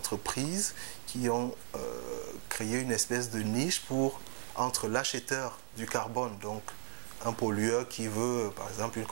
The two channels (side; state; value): left; silent; digital silence